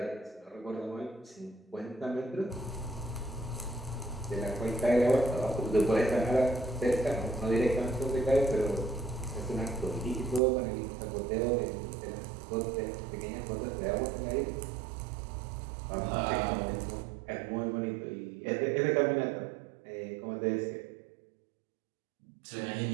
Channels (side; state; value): left; drops out; at 10.4 s